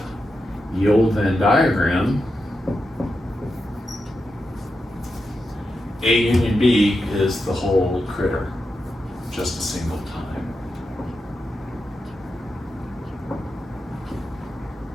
the old Venn diagram, A union B is the whole critter, just a single time.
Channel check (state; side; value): normal; both; correlation 0.88